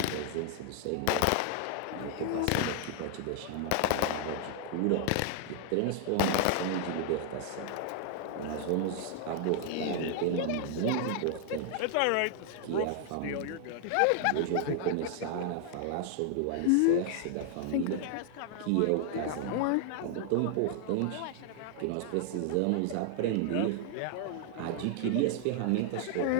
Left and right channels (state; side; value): different; both; correlation 0.00